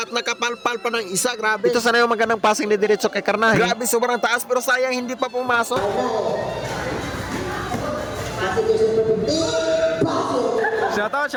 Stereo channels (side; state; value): both; identical; correlation 1.00